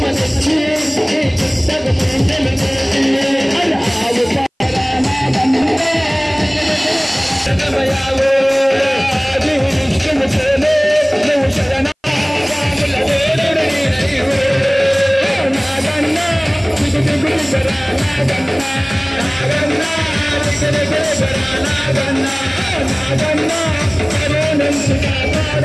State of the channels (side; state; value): both; identical; correlation 1.00